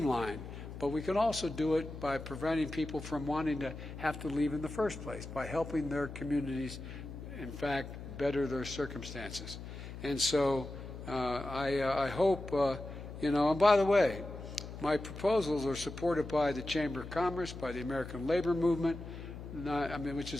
but we can also do it by preventing people from wanting to have to leave in the first place, by helping their communities, in fact, better their circumstances. And so I hope, and by the way, my proposals are supported by the Chamber of Commerce, by the American Labor Movement, which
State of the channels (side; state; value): left; noise; hum, 10 dB below the sound